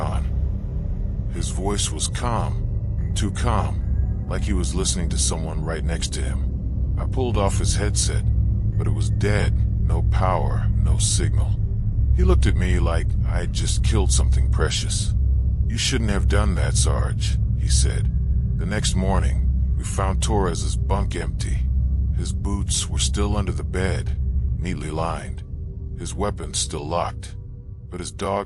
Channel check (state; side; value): identical; both; correlation 1.00